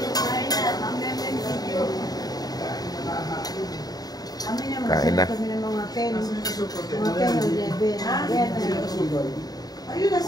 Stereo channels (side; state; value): right; late; 0.18 ms